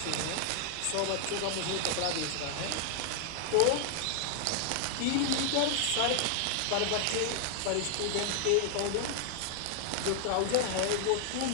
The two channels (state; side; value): different; both; correlation 0.00